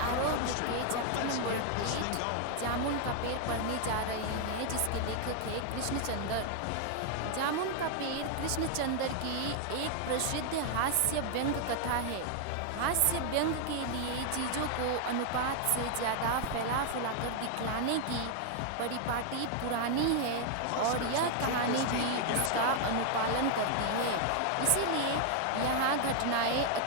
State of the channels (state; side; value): different; both; correlation 0.00